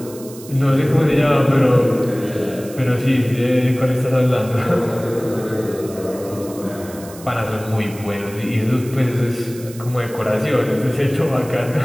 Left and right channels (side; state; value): right; noise; hiss, 18 dB below the sound